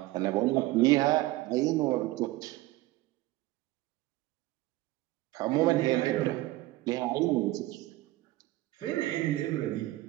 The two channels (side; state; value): left; quieter; 17.9 dB